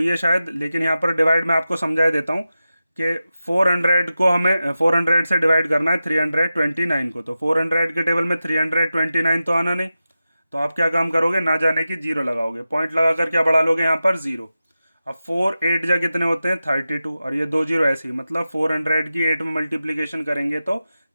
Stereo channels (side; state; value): both; inverted; correlation -0.93